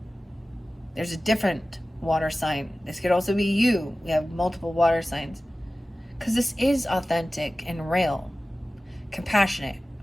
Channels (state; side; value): normal; both; correlation 0.96